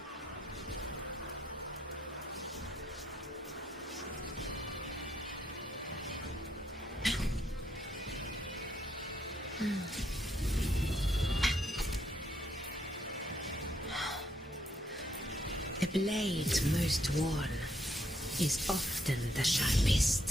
The blade most worn is often the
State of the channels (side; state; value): both; normal; correlation 0.74